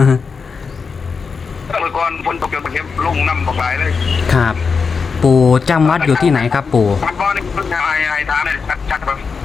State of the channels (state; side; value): quieter; right; 5.3 dB